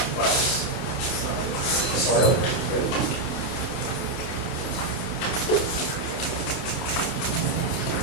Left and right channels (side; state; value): right; late; 28 ms